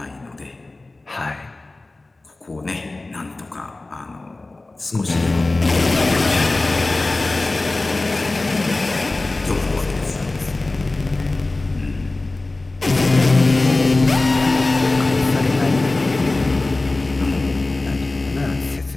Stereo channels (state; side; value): quieter; right; 3.1 dB